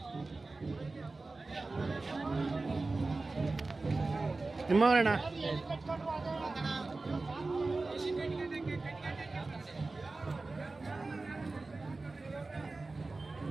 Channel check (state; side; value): quieter; left; 3.5 dB